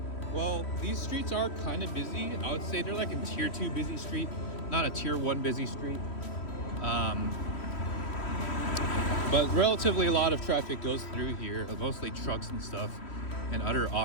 Well, these streets are kind of busy. I would say they're like a tier 2 busy street, not a tier 1 busy street. But relatively a lot of traffic goes through here, mostly trucks and stuff and other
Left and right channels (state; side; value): late; right; 3.1 ms